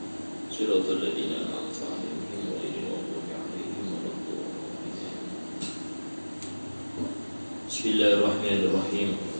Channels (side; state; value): both; inverted; correlation -1.00